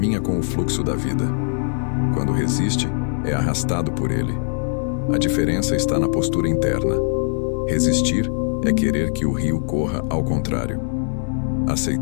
com o fluxo da vida. Quando resiste, é arrastado por ele. A diferença está na postura interna. Resistir é querer que o rio corra ao contrário.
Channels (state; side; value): silent; right; digital silence